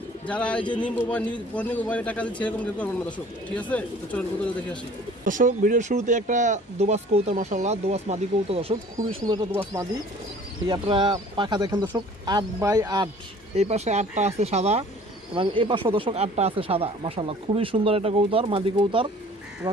যারা এই যে নিব বা মোবাইলে টাকা দিচ্ছে এরকম কেউ করবেন না দর্শক, ঠিক আছে? তো চলেন কবুতরকে দেখে আসি দর্শক। ভিডিওর শুরুতে একটা দোবাস কবুতর মাশাআল্লাহ, দোবাস মাদি কবুতর দর্শক, খুবই সুন্দর একটা দোবাস মাদি। এই আপনারা পাখা দেখেন দর্শক 8x8, এই পাশে 8টা আছে সাদা এবং এই পাশে দর্শক 8টা আছে সাদা মাশাআল্লাহ, খুবই সুন্দর একটা কবুতর মাদি কবুতর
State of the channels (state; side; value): normal; both; correlation 0.50